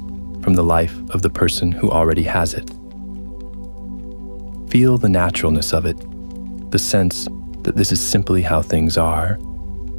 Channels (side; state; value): both; inverted; correlation -1.00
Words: from the life of the person who already has it. Feel the naturalness of it, the sense that this is simply how things are,